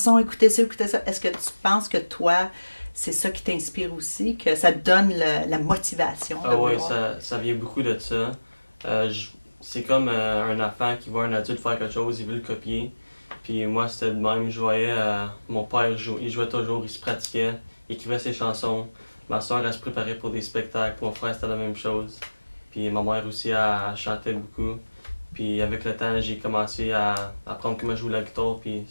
écoutez ça, écoutez ça ». Est-ce que tu penses que toi, c'est ça qui t'inspire aussi, que ça te donne la motivation de Ah ouais, vouloir? ça vient beaucoup de ça. C'est comme un enfant qui voit un adulte faire quelque chose, il veut le copier. Puis moi, c'était de même. Je voyais mon père il jouait toujours, il se pratiquait, il écrivait ses chansons. Ma soeur, elle se préparait pour des spectacles. Mon frère, c'était la même chose. Puis ma mère aussi, elle chantait beaucoup. Puis avec le temps, j'ai commencé à apprendre comment jouer la guitare, puis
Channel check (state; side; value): inverted; both; correlation -1.00